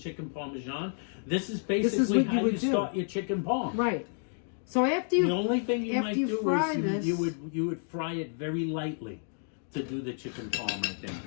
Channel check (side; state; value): right; silent; 58 dB below the other